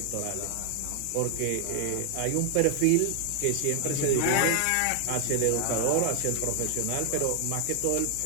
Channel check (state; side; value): different; both; correlation 0.00